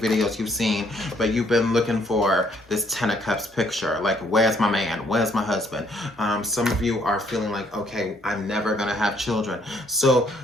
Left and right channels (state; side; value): normal; both; correlation 0.67